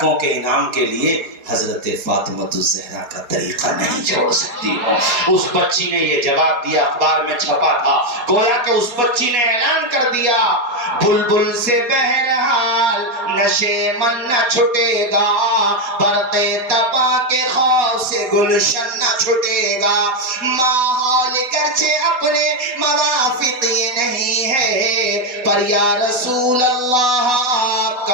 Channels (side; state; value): left; late; 4.1 ms